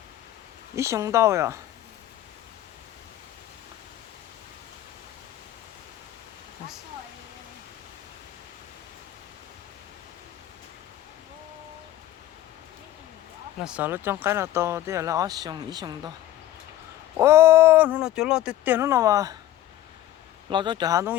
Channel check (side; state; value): right; quieter; 13.6 dB